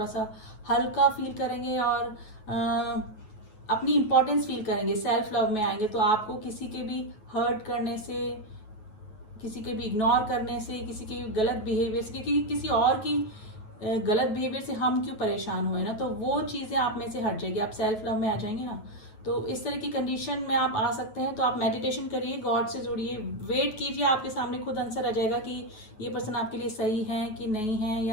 सा हल्का फील करेंगे और अपनी इंपॉर्टेंस फील करेंगे, सेल्फ लव में आएंगे। तो आपको किसी के भी हर्ट करने से, किसी के भी इग्नोर करने से, किसी के गलत बिहेवियर से, क्योंकि किसी और की गलत बिहेवियर से हम क्यों परेशान हुए ना, तो वो चीज़ें आप में से हट जाएगी, आप सेल्फ लव में आ जाएंगे ना। तो इस तरह की कंडीशन में आप आ सकते हैं। तो आप मेडिटेशन करिए, गॉड से जुड़िए, वेट कीजिए, आपके सामने खुद आंसर आ जाएगा कि ये पर्सन आपके लिए सही है कि नहीं है,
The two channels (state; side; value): late; right; 9.3 ms